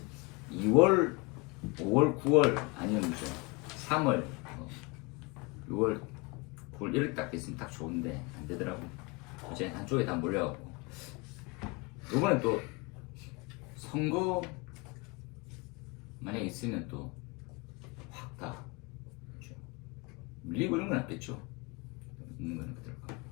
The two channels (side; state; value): right; quieter; 27.6 dB